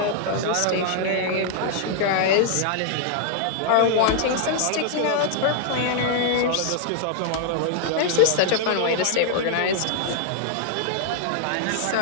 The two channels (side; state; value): both; different; correlation -0.01